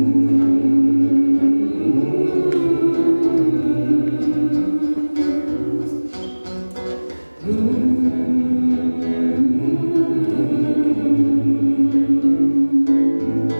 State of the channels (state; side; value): inverted; both; correlation -1.00